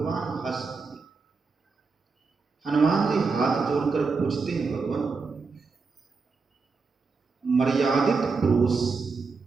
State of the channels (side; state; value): left; quieter; 4.6 dB